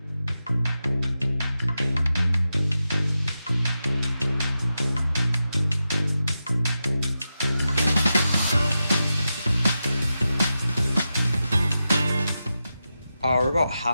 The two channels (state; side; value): inverted; both; correlation -0.90